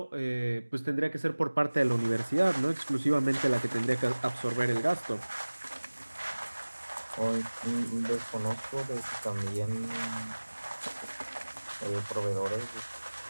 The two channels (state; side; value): inverted; both; correlation -1.00